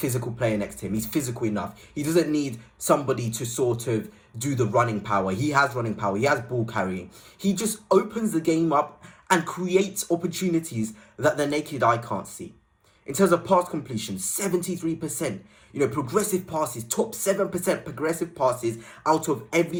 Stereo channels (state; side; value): identical; both; correlation 1.00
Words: player next to him. He's physical enough. He doesn't need somebody to sort of do the running power. He has running power. He has ball carrying. He just opens the game up and creates opportunities that the naked eye can't see. In terms of pass completion, 73%. Progressive passes, top 7% progressive passes out of